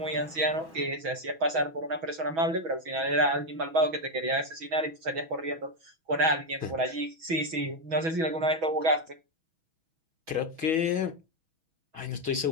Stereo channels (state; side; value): late; left; 6.2 ms